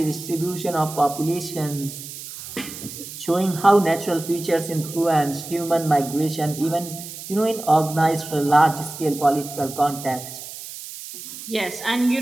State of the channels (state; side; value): noise; right; hiss, 12 dB below the sound